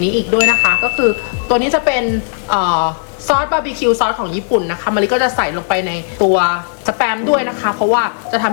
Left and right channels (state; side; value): silent; right; digital silence